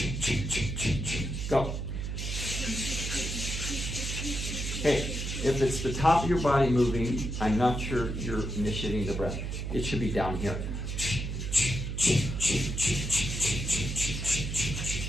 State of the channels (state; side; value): noise; right; hum, 3 dB below the sound